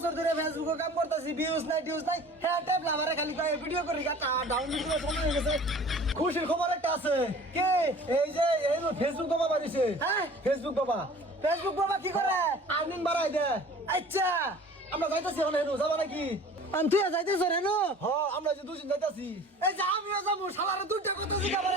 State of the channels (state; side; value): normal; both; correlation 0.45